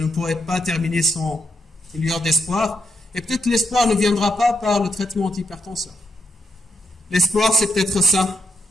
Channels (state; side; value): normal; both; correlation 0.81